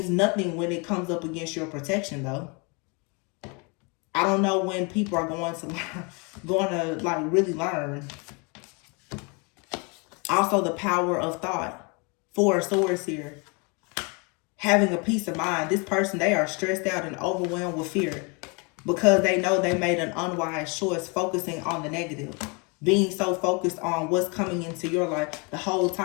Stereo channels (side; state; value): right; quieter; 31.6 dB